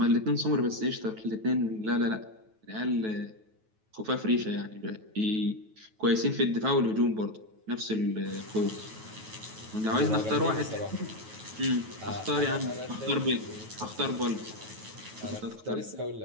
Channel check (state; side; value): late; left; 9.2 ms